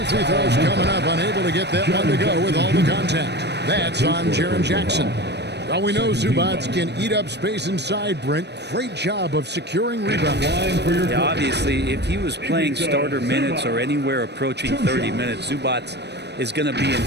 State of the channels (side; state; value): left; late; 0.49 ms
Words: free throws coming up. Unable to get that one to go with all the contact. That's on Jaren Jackson. Well, we know Zubac can eat up space inside, Brent. Great job of securing rebounds. Yeah, obviously, if he was playing starter minutes or anywhere approaching 30 minutes, Zubac is going to be in